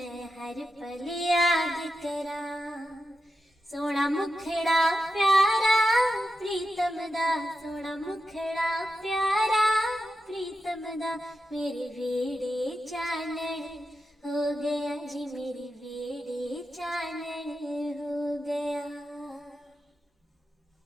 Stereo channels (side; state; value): both; normal; correlation 0.89